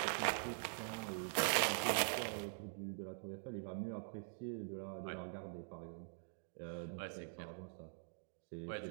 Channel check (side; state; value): left; silent; digital silence